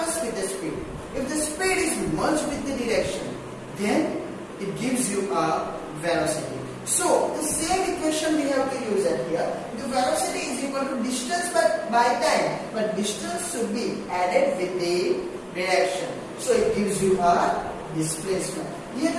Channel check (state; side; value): identical; both; correlation 1.00